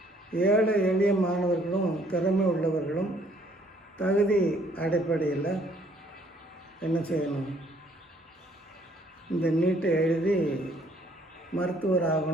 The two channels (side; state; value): both; normal; correlation 0.63